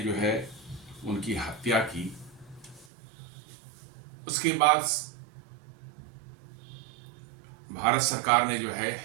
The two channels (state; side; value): drops out; left; at 2.9 s